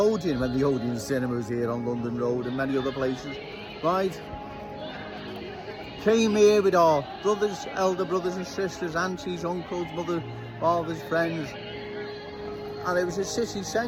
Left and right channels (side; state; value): both; identical; correlation 1.00